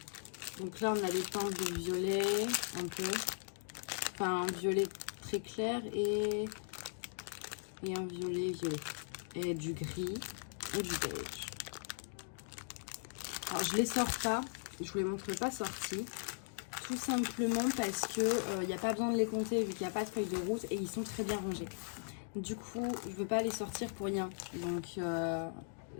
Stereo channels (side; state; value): right; silent; digital silence